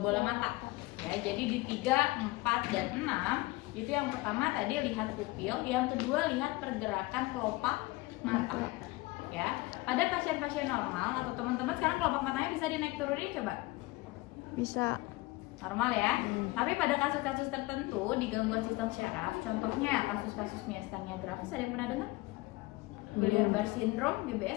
bola mata. Ya, jadi di 3, 4 dan 6 itu yang pertama tadi lihat pupil, yang kedua lihat pergerakan kelopak mata. Ya. Pada pasien-pasien normal atau teman-teman sekarang kelopak matanya bisa dinaik turunin coba. Bisa. Normal ya. Tapi pada kasus-kasus tertentu di gangguan sistem syaraf, contohnya kasus-kasus miastenia gravis, ada yang pernah dengar? Guillain-Barré syndrome,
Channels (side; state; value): right; quieter; 21.5 dB